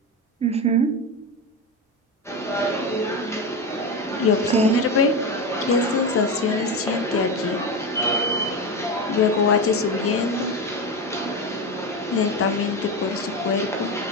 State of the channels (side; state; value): both; normal; correlation 0.18